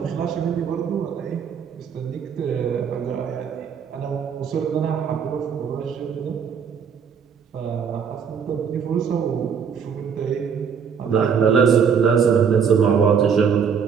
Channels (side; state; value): left; quieter; 6.9 dB